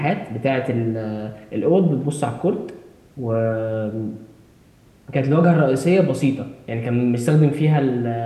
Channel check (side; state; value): both; identical; correlation 1.00